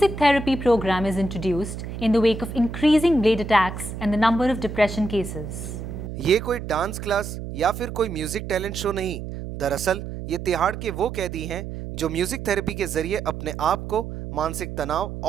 therapy program is introduced in the wake of increasing blade attacks and the number of depression cases. ये कोई dance class या फिर कोई music talent show नहीं, दरअसल ये तिहाड़ के वो कैदी हैं जो म्यूजिक थेरेपी के जरिए अपने आप को मानसिक तनाव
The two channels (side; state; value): right; noise; hum, 8 dB below the sound